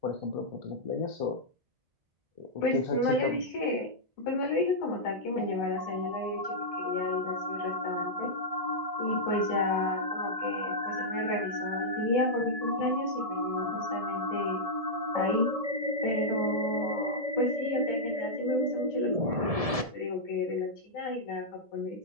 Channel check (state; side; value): late; left; 1.7 ms